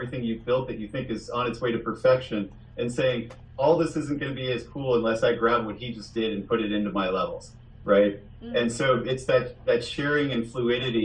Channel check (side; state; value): both; identical; correlation 1.00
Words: you've built that you think is on its way to perfection and saying, all this isn't going to be as cool unless I grab what he just did and put it into my levels. right? And so it's that sharing and